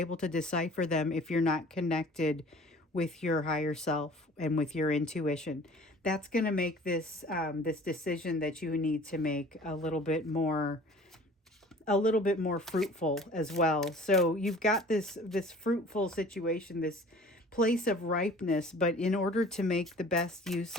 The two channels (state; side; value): normal; both; correlation 0.47